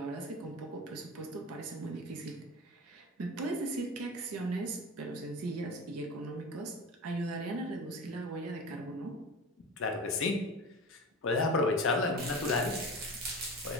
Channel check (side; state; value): both; normal; correlation 0.32